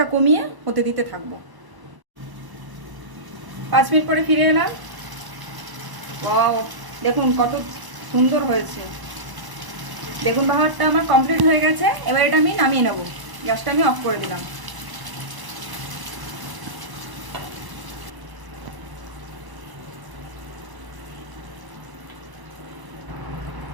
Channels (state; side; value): late; left; 1.0 ms